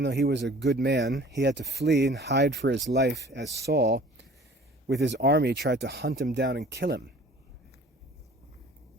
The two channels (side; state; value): both; normal; correlation 0.49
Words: though he was a good man. He had to flee and hide for his life as Saul, with his army, tried to hunt him down and kill him.